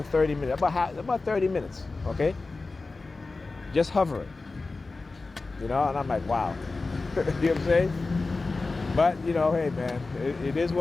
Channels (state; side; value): quieter; right; 3.7 dB